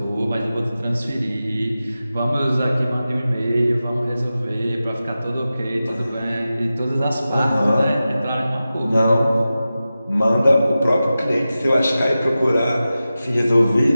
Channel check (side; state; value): both; inverted; correlation -0.94